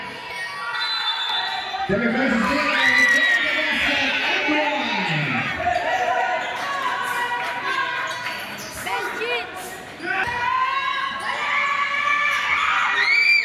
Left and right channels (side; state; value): both; identical; correlation 1.00